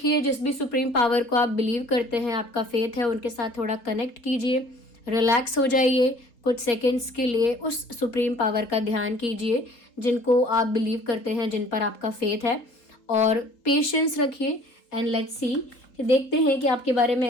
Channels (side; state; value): right; late; 3.8 ms